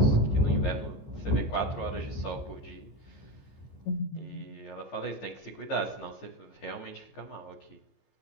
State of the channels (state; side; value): late; right; 15 ms